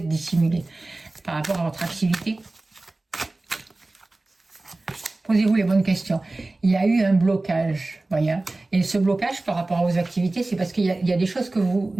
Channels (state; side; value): quieter; left; 3.0 dB